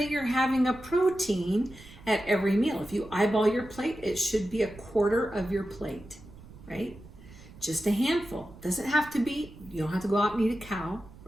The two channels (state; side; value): noise; right; rumble, 19 dB below the sound